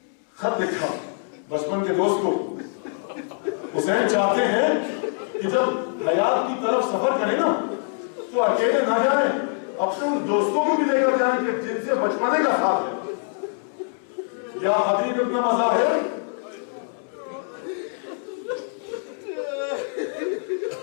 خط لکھا بچپن کے دوست کو. حسین چاہتے ہیں کہ جب حیات کی طرف سفر کریں نا تو اکیلے نہ جائیں, اپنے ان دوستوں کو بھی لے کر جائیں کہ جن سے بچپنے کا ساتھ ہے. یا حبیب ابن مظاہر,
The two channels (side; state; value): right; silent; 59 dB below the other